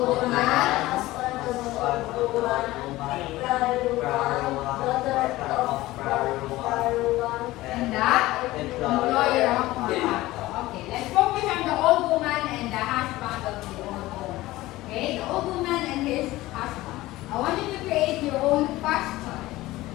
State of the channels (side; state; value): right; quieter; 17.8 dB